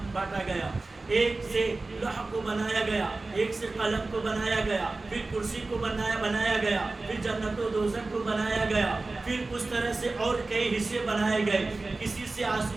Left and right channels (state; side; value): quieter; left; 3.4 dB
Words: گیا۔ ایک سے لوح کو بنایا گیا، ایک سے قلم کو بنایا گیا، پھر کرسی کو بنایا گیا، پھر جنت و دوزخ کو بنایا گیا، پھر اس طرح سے اور کئی حصے بنائے گئے۔ کسی سے